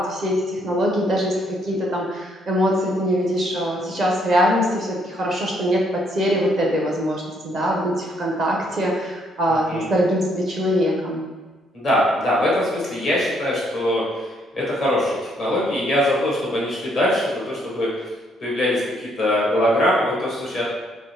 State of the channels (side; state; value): both; normal; correlation 0.70